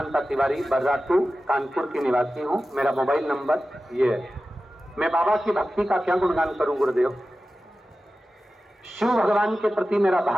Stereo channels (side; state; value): both; normal; correlation 0.94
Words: तिवारी, बर्रा 2, कानपुर की निवासी हूँ। मेरा मोबाइल नंबर ये है। मैं बाबा की भक्ति का क्या गुणगान करूं गुरुदेव। शिव भगवान के प्रति मेरा